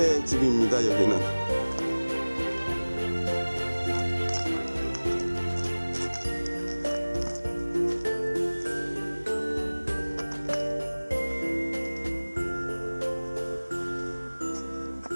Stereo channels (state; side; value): inverted; both; correlation -1.00